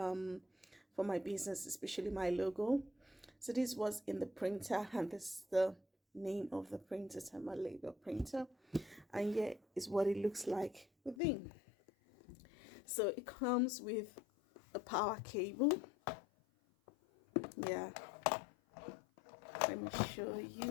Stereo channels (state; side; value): drops out; right; at 11.2 s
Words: my business, especially my logo. So this was in the printer, and this is the name of the printer, thermal label printer, and here is what it looks like within. So it comes with a power cable. Yeah, let me show